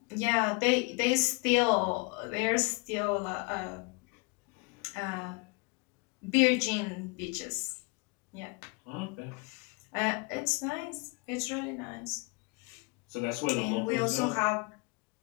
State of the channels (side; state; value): right; quieter; 29.0 dB